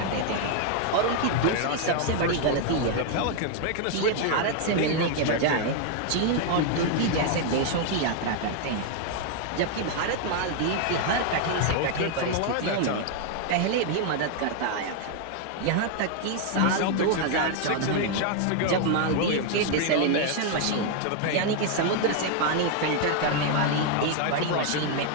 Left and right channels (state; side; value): different; both; correlation 0.00